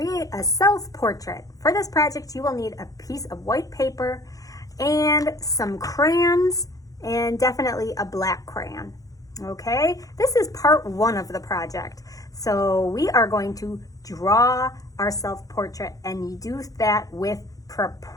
a self-portrait. For this project you will need a piece of white paper and some crayons and definitely a black crayon. Okay, this is part one of the project. So we are going to draw our self-portrait and you do that with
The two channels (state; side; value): late; right; 0.17 ms